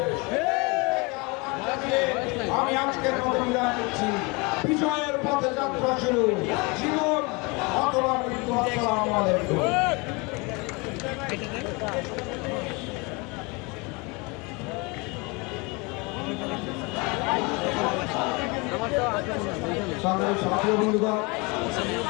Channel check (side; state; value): right; quieter; 27.9 dB